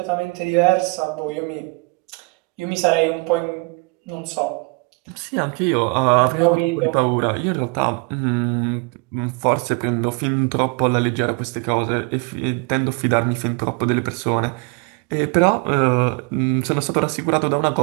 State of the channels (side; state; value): left; quieter; 30.4 dB